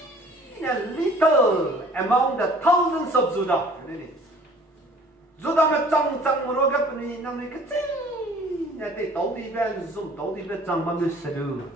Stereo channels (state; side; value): normal; both; correlation 0.52